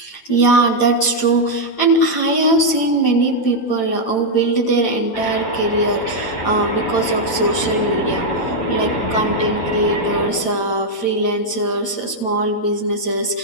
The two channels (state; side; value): late; right; 8.9 ms